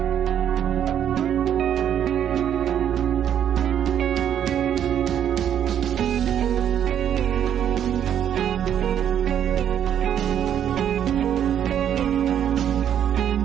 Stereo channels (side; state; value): left; quieter; 9.6 dB